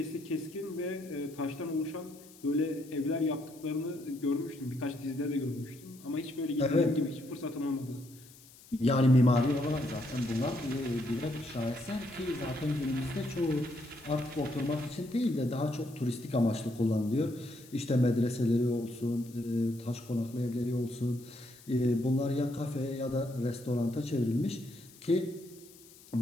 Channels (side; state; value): left; noise; hiss, 22 dB below the sound